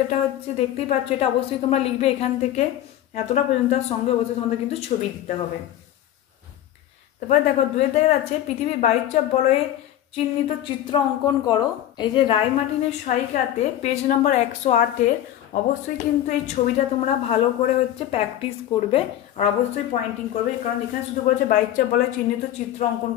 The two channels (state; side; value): quieter; right; 12.2 dB